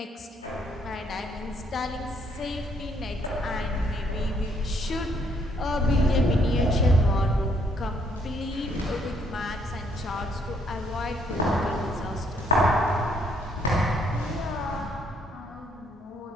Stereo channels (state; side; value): normal; both; correlation 0.69